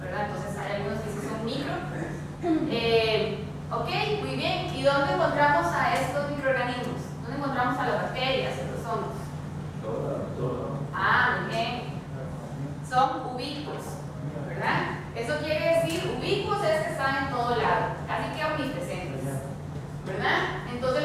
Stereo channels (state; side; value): identical; both; correlation 1.00